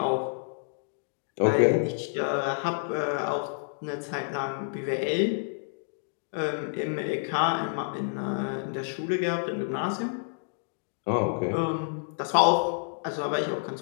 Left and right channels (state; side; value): silent; right; digital silence